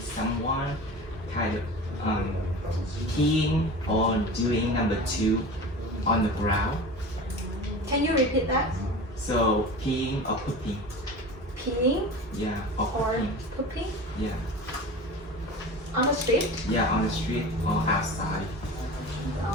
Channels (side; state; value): both; normal; correlation 0.34